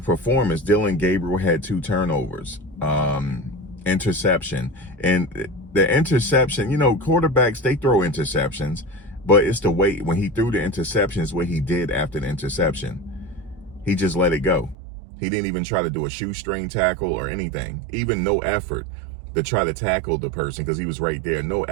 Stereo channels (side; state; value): left; drops out; at 14.8 s